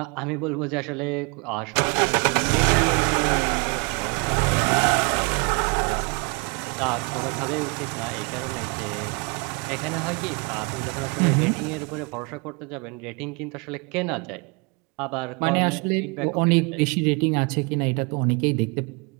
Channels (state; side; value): quieter; left; 31.2 dB